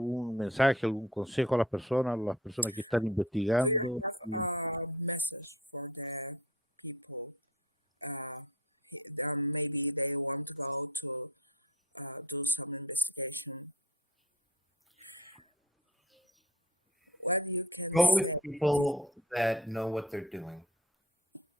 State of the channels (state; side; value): normal; both; correlation 0.44